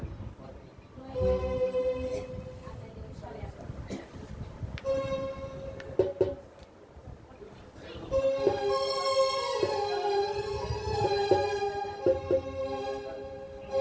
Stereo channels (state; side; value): identical; both; correlation 1.00